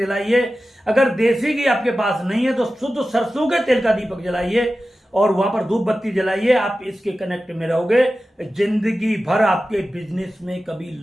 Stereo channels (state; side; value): normal; both; correlation 0.94